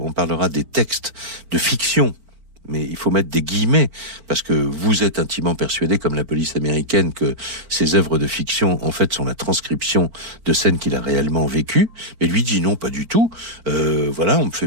on parlera des textes de fiction mais il faut mettre des guillemets, parce que vous êtes intimement persuadé, comme la police américaine, que ces œuvres de fiction, en fait, sont la transcription de scènes qu'il a réellement vécues. Mais lui dit non, pas du tout. Voilà, on me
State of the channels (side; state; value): left; late; 4.5 ms